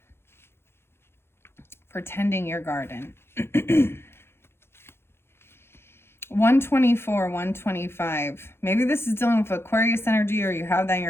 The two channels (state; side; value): late; right; 0.12 ms